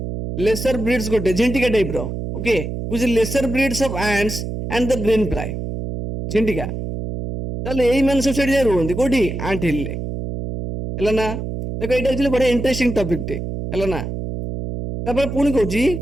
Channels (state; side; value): noise; right; hum, 5 dB below the sound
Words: ଲେସର ବ୍ରିଡ୍ସ ଗୋଟେ, ଝିଣ୍ଟିକା ଟାଇପ ର। Okay, which lesser breeds of ants and the green fly, ଝିଣ୍ଟିକା। ତାହେଲେ ଏଇ ମାନେ ସବୁ ସେଠି ଯାଇ ରୁହନ୍ତି, କୋଉଠି? ଆଣ୍ଟ ହିଲ୍ ରେ, ହେଲା ନା? ଦେଖ, ଏଇଟା ଆକ୍ଚୁଆଲି ବଢିଆ ଇଣ୍ଟରେଷ୍ଟିଂ ଟପିକ ଟେ, ହେଲା ନା? ତାପରେ ପୁଣି